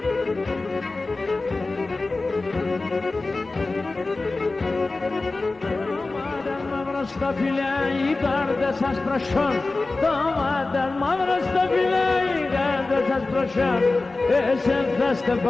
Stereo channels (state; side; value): quieter; right; 3.4 dB